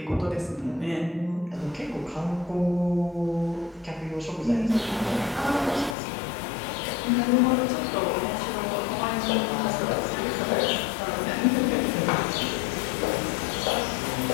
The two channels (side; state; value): right; drops out; at 6.0 s